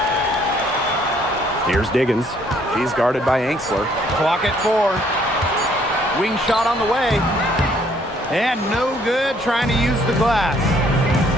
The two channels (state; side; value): normal; both; correlation 0.64